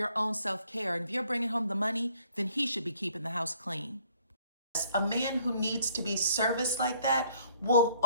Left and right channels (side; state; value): both; inverted; correlation -0.62